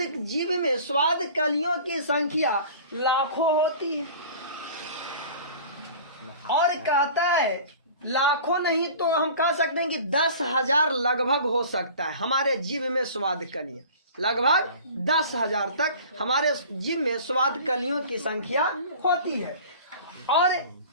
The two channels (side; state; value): both; inverted; correlation -0.42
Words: जीभ में स्वाद कलियों की संख्या लाखों होती है। और कहता है लाखों नहीं तो हम कह सकते हैं कि 10,000 लगभग हो सकता है हमारे जीभ में स्वाद कलियां। लगभग 10,000 तक हमारे जीभ में स्वाद कलियों की संख्या होती है। और